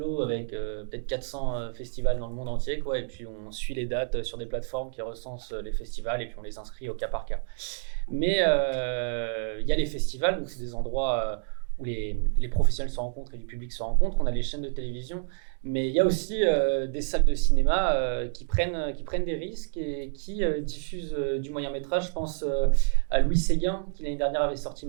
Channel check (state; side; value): silent; left; digital silence